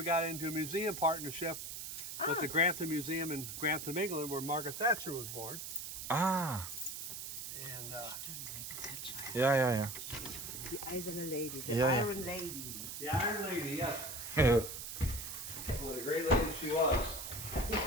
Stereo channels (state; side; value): noise; right; hiss, 7 dB below the sound